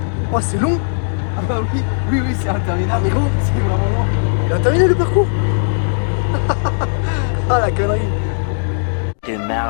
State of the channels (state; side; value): silent; right; digital silence